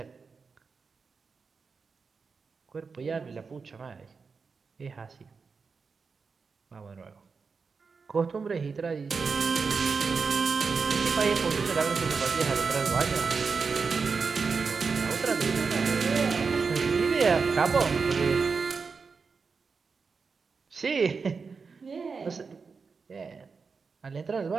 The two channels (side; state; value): left; quieter; 5.0 dB